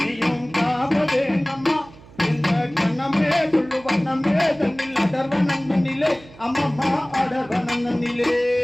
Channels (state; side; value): noise; right; hum, 22 dB below the sound